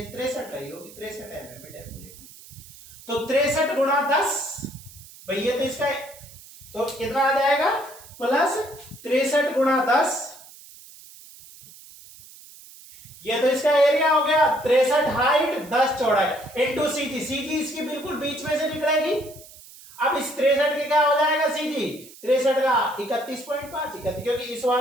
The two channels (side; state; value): right; noise; hiss, 20 dB below the sound